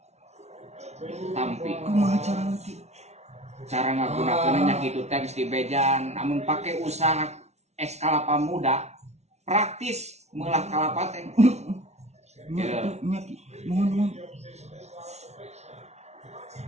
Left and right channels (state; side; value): late; left; 0.32 ms